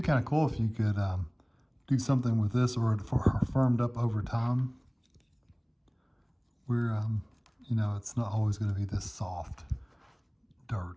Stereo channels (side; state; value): both; identical; correlation 1.00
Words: be kind of cool if you could do something with this or for firmed up over time where, you know, it's not always going to be this soft